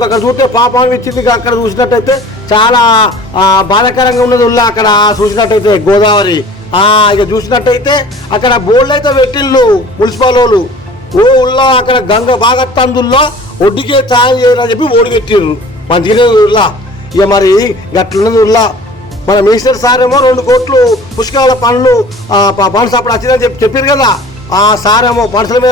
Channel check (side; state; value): both; normal; correlation 0.46